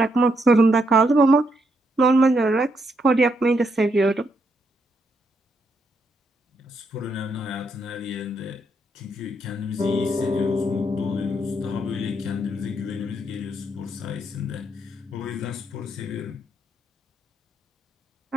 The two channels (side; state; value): both; normal; correlation 0.77